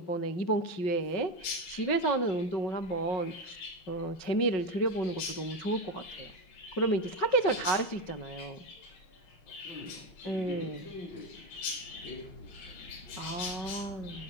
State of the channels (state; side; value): late; right; 5.4 ms